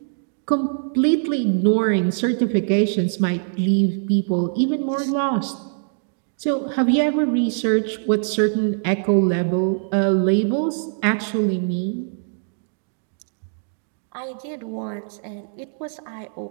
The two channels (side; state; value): left; silent; digital silence